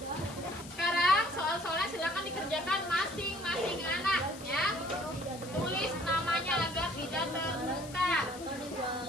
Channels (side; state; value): left; noise; hiss, 16 dB below the sound